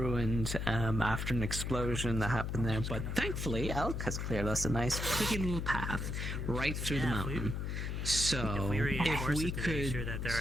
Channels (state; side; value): noise; left; hum, 3 dB below the sound